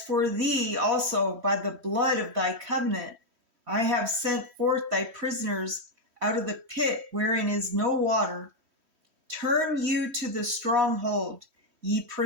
for thee also, by the blood of thy covenant, I have sent forth thy prisoners out of the pit wherein is no water. Turn you to the stronghold, ye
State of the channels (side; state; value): left; late; 3.1 ms